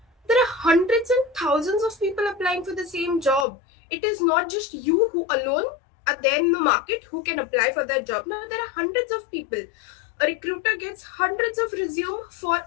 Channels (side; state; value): right; drops out; at 3.5 s